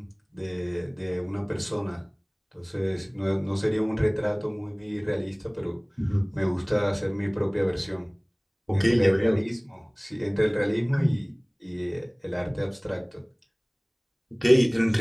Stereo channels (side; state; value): both; identical; correlation 1.00